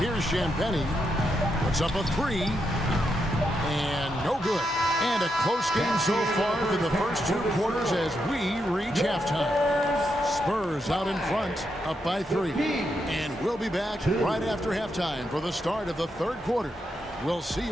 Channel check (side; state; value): both; normal; correlation 0.82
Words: Champagnie. Puts up a 3. And no good. And a close game so far for the first 2 quarters as we reach halftime. Spurs out in front, up by 3. And we'll be back right after halftime for the start of the third quarter. We'll see